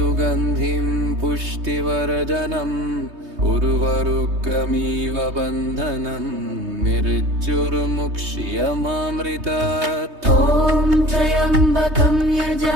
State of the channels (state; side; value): late; left; 3.2 ms